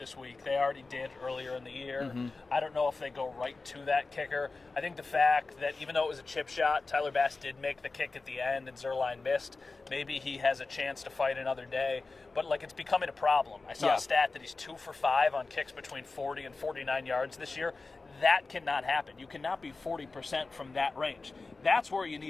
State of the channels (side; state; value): right; quieter; 3.8 dB